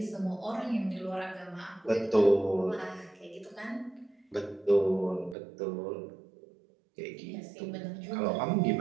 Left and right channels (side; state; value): left; drops out; at 5.4 s